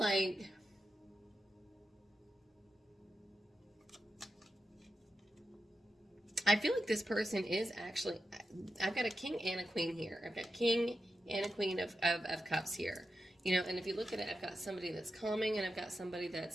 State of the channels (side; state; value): both; normal; correlation 0.89